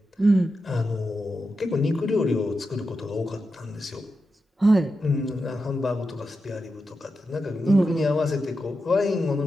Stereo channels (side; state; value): both; normal; correlation 0.89